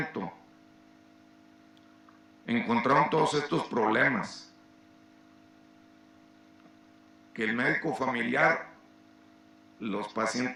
Encontraron todos estos problemas. Que el médico familiar, los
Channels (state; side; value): identical; both; correlation 1.00